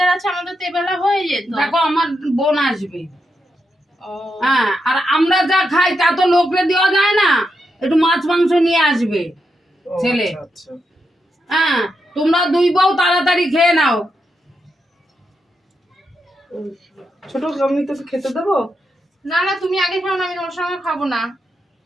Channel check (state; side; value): normal; both; correlation 0.84